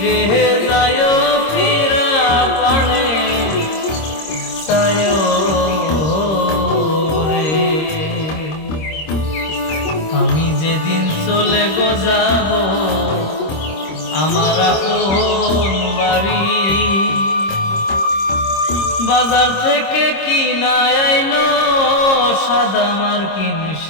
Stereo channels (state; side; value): late; right; 26 ms